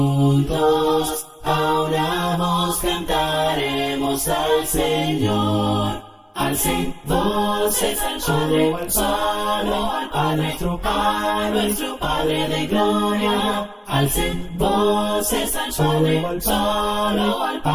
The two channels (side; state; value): both; identical; correlation 1.00